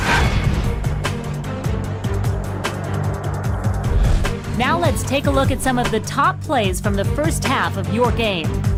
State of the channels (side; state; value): both; identical; correlation 1.00